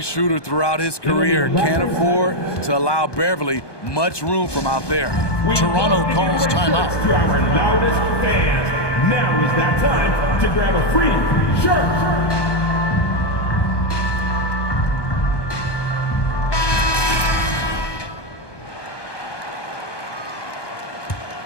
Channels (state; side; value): late; right; 1.2 ms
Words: shooter throughout his career. Can't afford to allow Beverly much room from out there. Toronto calls timeout. To our loudest fans, now is that time to grab a free shirt.